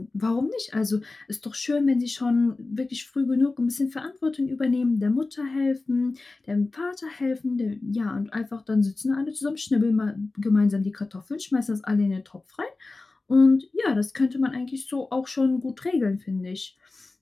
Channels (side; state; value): right; quieter; 3.4 dB